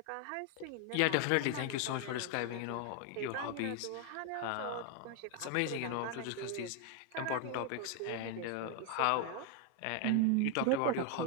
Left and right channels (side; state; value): both; different; correlation 0.00